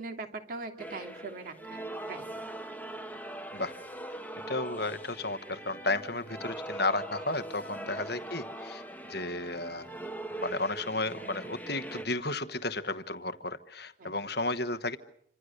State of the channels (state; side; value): normal; both; correlation -0.06